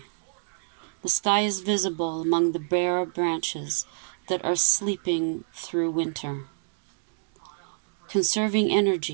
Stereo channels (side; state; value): left; silent; digital silence